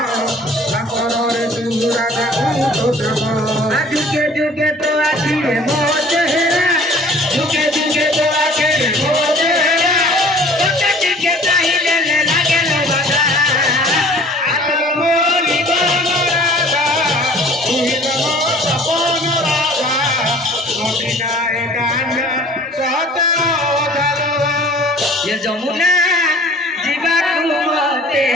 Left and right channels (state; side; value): normal; both; correlation 0.50